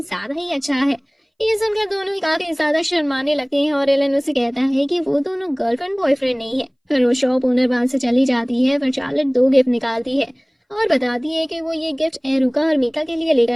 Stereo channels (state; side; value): identical; both; correlation 1.00